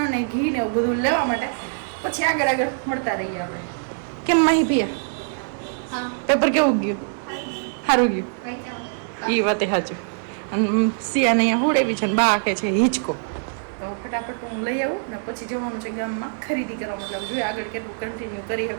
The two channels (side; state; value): left; silent; 63 dB below the other